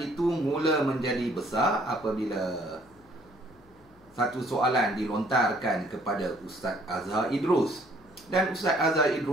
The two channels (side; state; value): left; noise; hum, 28 dB below the sound